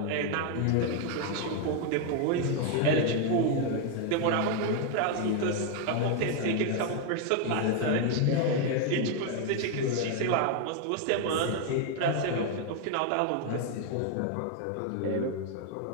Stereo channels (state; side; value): different; both; correlation 0.01